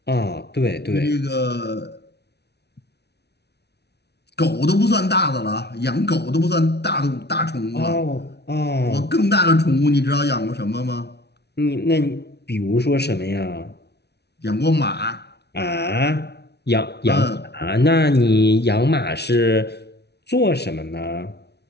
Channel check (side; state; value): right; late; 0.49 ms